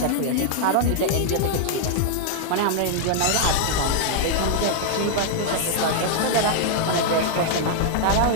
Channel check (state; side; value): different; both; correlation -0.01